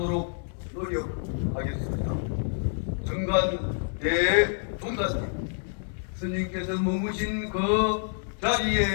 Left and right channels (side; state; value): right; silent; digital silence